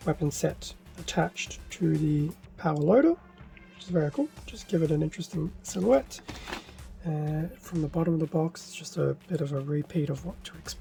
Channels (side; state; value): both; identical; correlation 1.00